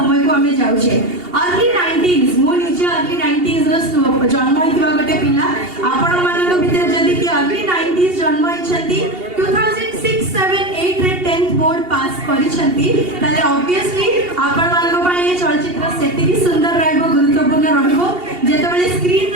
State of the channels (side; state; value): left; late; 2.8 ms